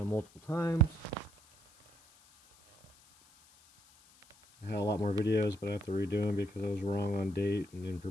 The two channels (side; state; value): left; noise; hiss, 27 dB below the sound